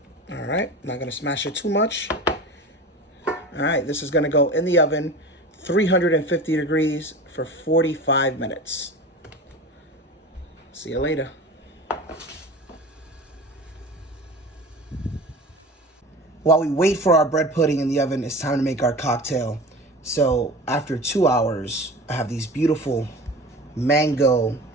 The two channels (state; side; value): normal; both; correlation 0.34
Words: All right, not gonna smash it too much. All right, this is gonna go in the oven 350 degrees for 45 minutes. See you later. While we wait for our bread pudding in the oven, it's time to make our cocktail. So after 2 hours, I have these beautiful mango